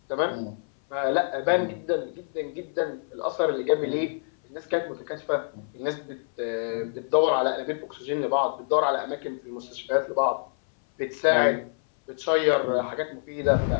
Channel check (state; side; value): silent; right; 58 dB below the other